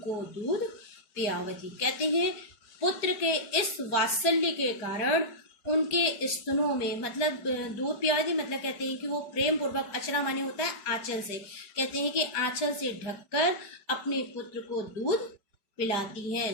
को दूध पियावती। कहते हैं पुत्र के इस वात्सल्य के कारण उनके स्तनों में, मतलब दूध पियावती मतलब कहते हैं कि वो प्रेम पूर्वक, अचरा माने होता है आंचल से, कहते हैं कि आंचल से ढककर अपने पुत्र को दूध पिलाती हैं।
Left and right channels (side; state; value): right; late; 5.0 ms